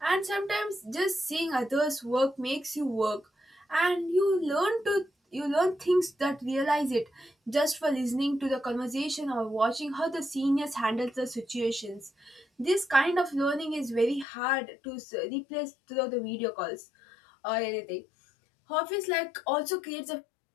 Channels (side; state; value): right; drops out; at 14.2 s